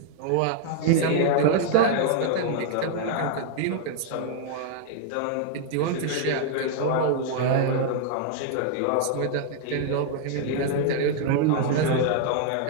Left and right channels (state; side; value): different; both; correlation 0.00